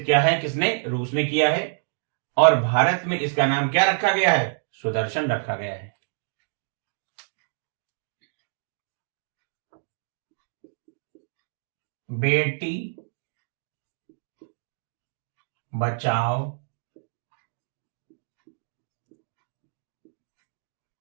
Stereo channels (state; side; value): silent; left; digital silence